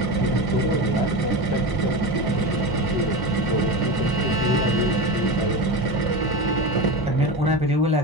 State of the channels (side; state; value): right; late; 1.0 ms